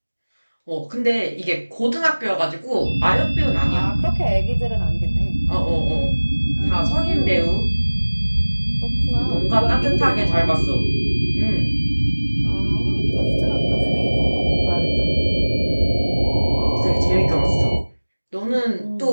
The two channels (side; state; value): both; inverted; correlation -1.00